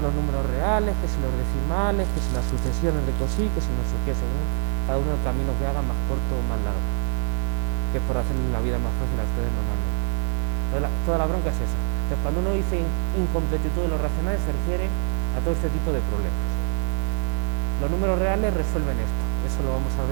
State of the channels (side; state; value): left; silent; 62 dB below the other